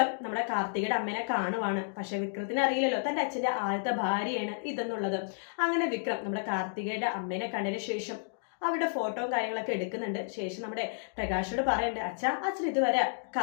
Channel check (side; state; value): right; silent; digital silence